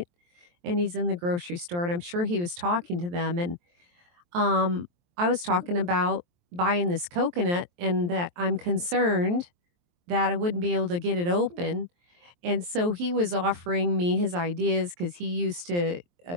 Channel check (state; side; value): late; left; 23 ms